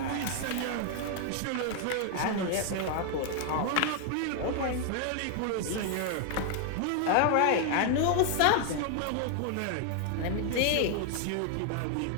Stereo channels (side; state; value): both; different; correlation 0.00